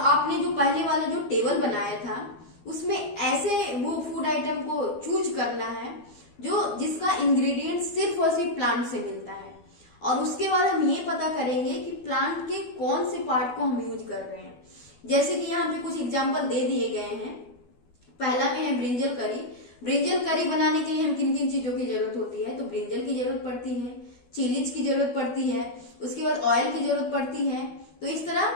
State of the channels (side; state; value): right; late; 12 ms